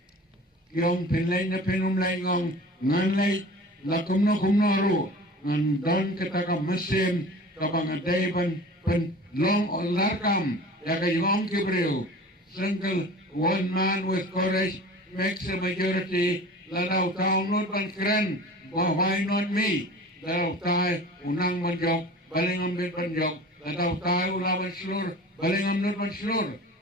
yung pinlay na pinumlay ngong nganlay la kumno ro ngan don kita ka mesin kabang aday pan long o larkam ya kayong kibriw single one man with courage makes a majority. Ladaw tao not ban kren, why not me? Ladaw tayo unang manjok, balingam bit manjok. Ladaw tayo ulaban slur, balingam not man slur.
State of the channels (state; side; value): normal; both; correlation 0.40